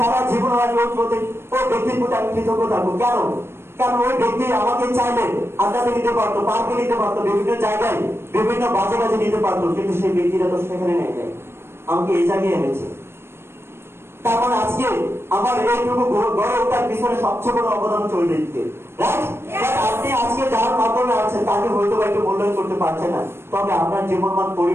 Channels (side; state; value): left; late; 0.12 ms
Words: জীবন আমি ওই ব্যক্তির প্রতি আমি কৃতজ্ঞ থাকবো। কেন? কারণ ওই ব্যক্তি আমাকে চাইলে আড্ডাতে নিতে পারতো, পার্কে নিতে পারতো, বিভিন্ন জায়গায় বিভিন্ন বাজে বাজে নিতে পারতো, কিন্তু সেই ব্যক্তিটা তো সেখানে নেই, আমাকে এই জায়গায় এনেছে। তার মানে আজকে আমার এইটুকু গড়ে ওঠার পিছনে সবচেয়ে বড় অবদান চলে দিতে, রাইট? আপনি আজকে যার মাধ্যমে আছেন তাকে হয়তো একটু মূল্যায়ন করতে পারছেন না, তবে আপনার জীবনমান